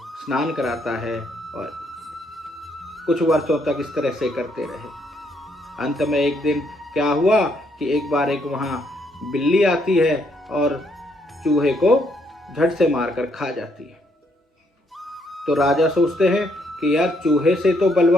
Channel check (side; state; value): both; normal; correlation 0.72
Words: स्नान कराता है और कुछ वर्षों तक इस तरह से करते रहे। अंत में एक दिन क्या हुआ कि एक बार एक वहाँ बिल्ली आती है और चूहे को झट से मारकर खा जाती है। तो राजा सोचते हैं कि यार चूहे से तो